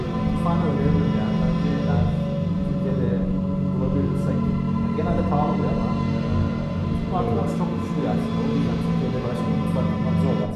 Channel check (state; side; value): identical; both; correlation 1.00